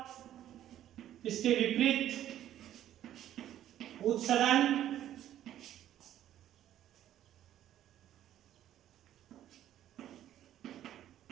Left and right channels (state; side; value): quieter; left; 11.9 dB